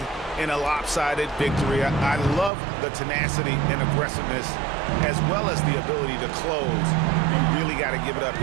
in a lopsided victory. I love the tenacity and aggressiveness as well as the ability to close. You really got to give it up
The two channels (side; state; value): left; drops out; at 2.5 s